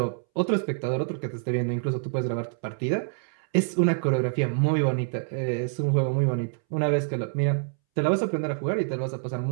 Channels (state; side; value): silent; left; 61 dB below the other